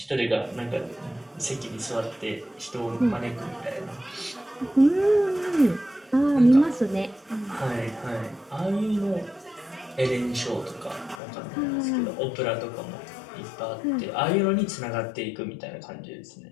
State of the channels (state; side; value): drops out; right; at 11.2 s